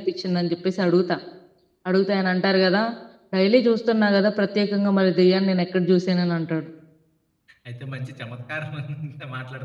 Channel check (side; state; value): both; identical; correlation 1.00